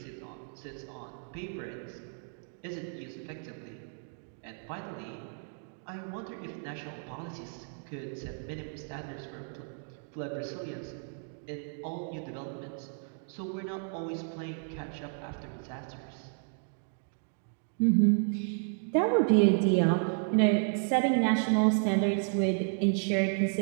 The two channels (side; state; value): left; silent; 56 dB below the other